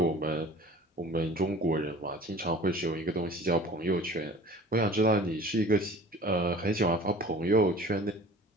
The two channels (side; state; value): both; normal; correlation 0.44